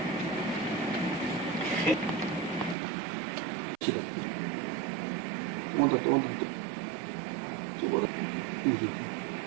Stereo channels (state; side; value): drops out; left; at 2.8 s